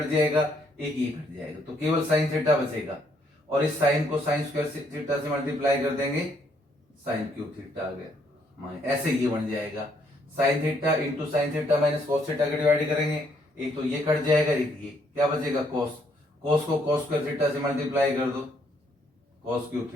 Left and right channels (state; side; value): normal; both; correlation 0.70